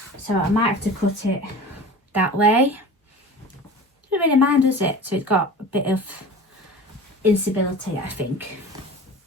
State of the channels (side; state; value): both; normal; correlation 0.37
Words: So I might have to cut it that way. Doesn't really mind, does it? So it's got a bit of instability, I think.